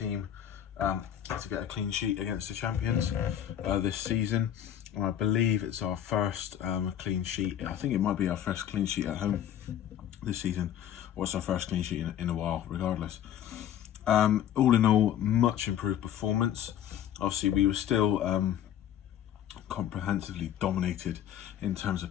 to get a clean sheet against the champions this season. And I believe it's our first clean sheet. I think it might be our first clean sheet at home this season, or it's our first clean sheet in a while, regardless. All in all, much improved performance. Obviously, we were still comprehensively dominated in terms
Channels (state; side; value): quieter; right; 10.4 dB